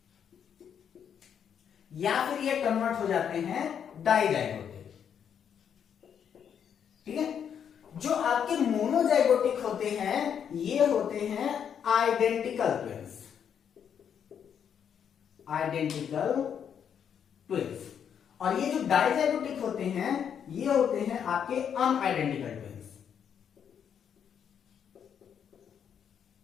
या फिर ये कन्वर्ट हो जाते हैं डाइजाइगोटिक। ठीक है, जो आपके मोनोजाइगोटिक होते हैं ये होते हैं आइडेंटिकल ट्विंस, आइडेंटिकल ट्विंस, और ये जो डाइजाइगोटिक होते हैं ये होते हैं आपके अनआइडेंटिकल ट्विंस।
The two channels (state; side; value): quieter; right; 8.1 dB